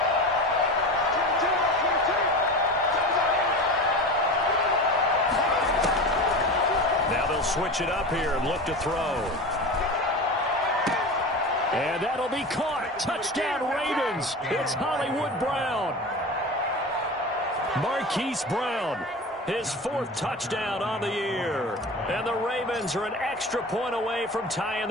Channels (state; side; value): normal; both; correlation 0.30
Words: Switch it up here and look to throw. And that'll be caught. Touchdown Ravens. It's Hollywood Brown. Marquise Brown, his 4th touchdown on the year. And the Ravens are an extra point away from tying